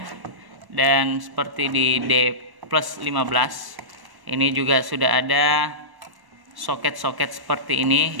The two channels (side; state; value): left; late; 1.1 ms